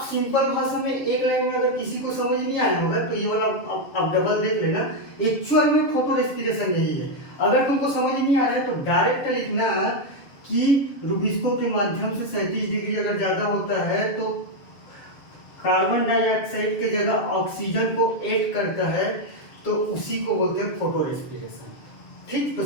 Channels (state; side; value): late; right; 7.1 ms